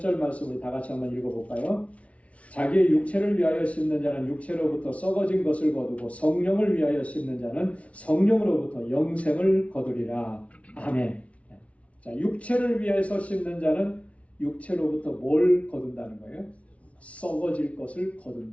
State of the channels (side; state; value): right; late; 0.064 ms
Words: 말씀을 다 같이 한번 읽어볼까요? 자기의 육체를 위하여 심는 자는 육체로부터 썩어진 것을 거두고 성령을 위하여 심는 자는 성령으로부터 영생을 거두리라. 아멘. 자, 육체를 위해서 심는 자는 육체로부터 뭘 거둔다는 거예요? 썩어질 것을